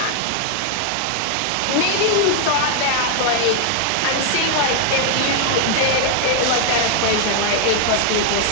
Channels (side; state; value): both; different; correlation 0.00